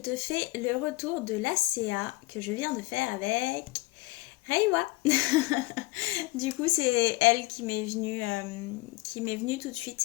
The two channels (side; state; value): right; quieter; 20.8 dB